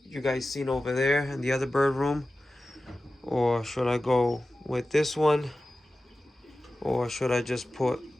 you guys seen over there in the other bird room, or should I go with this one, or should I just put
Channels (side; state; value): both; normal; correlation 0.95